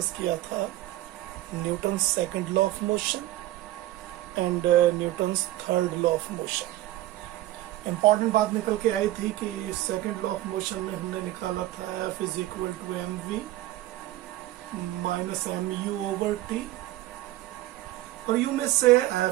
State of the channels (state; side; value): quieter; left; 15.6 dB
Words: किया था Newton second law of motion and Newton's third law of motion. Important बात निकल के आई थी कि सेकंड लॉ ऑफ मोशन में हमने निकाला था F is equal to M V minus M U over T, और यू में से